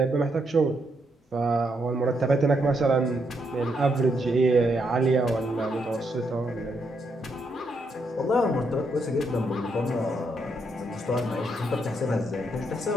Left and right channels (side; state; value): both; normal; correlation 0.78